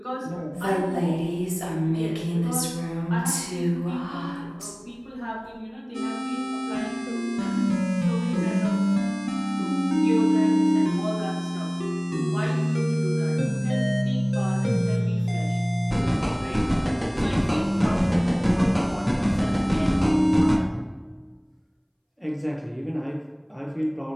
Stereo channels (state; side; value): identical; both; correlation 1.00